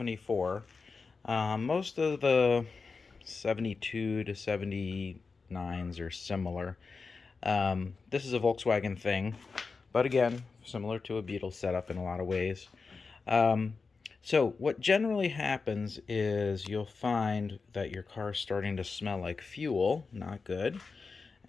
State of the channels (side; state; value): right; quieter; 4.5 dB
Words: Most of the 72 to 79s are similar. This is a Volkswagen thing, but again, similar to a Beetle setup in a lot of ways. So what generally happens is you'll find that your car's starting to smell like fuel, not good,